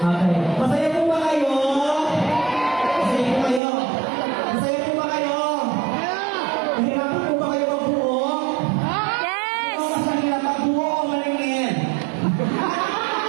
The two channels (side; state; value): left; drops out; at 3.6 s